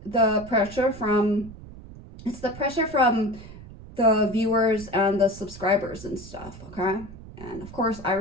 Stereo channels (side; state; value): right; noise; rumble, 16 dB below the sound